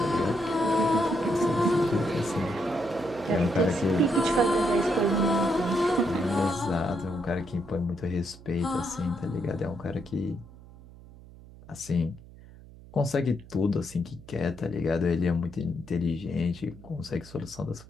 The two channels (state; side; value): noise; right; hum, 20 dB below the sound